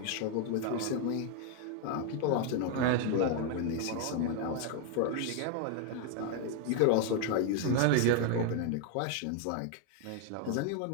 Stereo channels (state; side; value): different; both; correlation 0.01